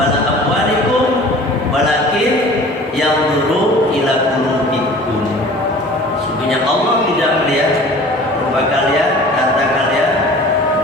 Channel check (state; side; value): normal; both; correlation 0.45